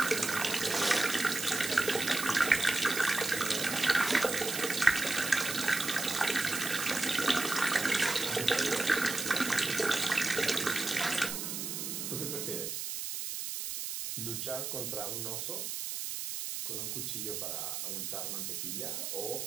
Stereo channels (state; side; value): noise; right; hiss, 4 dB below the sound